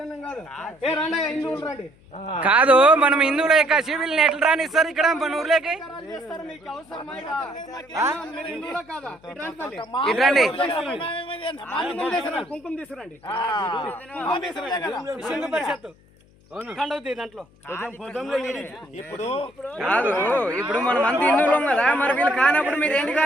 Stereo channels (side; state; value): left; noise; hum, 29 dB below the sound